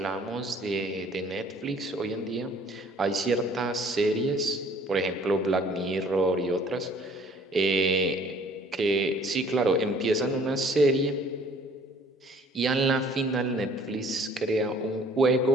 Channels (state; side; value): normal; both; correlation 0.55